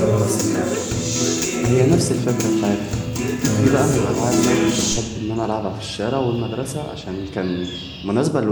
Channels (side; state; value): both; identical; correlation 1.00